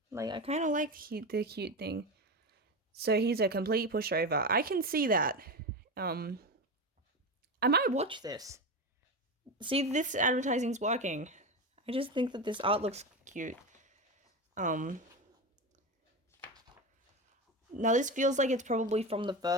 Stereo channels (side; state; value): both; normal; correlation 0.20